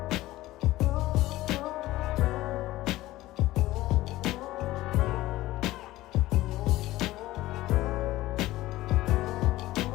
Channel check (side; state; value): right; quieter; 16.9 dB